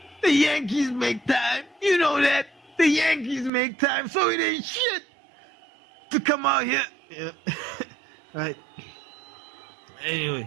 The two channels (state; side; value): drops out; left; at 3.5 s